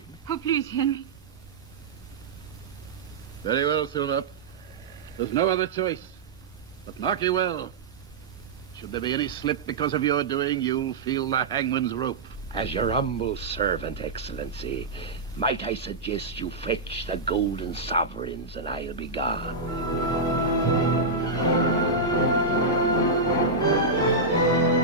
Oh, please, Henry. Very well, Silver. There's no other choice. But mark you well. Should there be any slip because of your doing, you'll feel the hangman's rope. As your humble servant, Excellency, might I suggest you fetch the golden sovereigns and I'll be gone.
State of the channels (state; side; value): quieter; left; 3.6 dB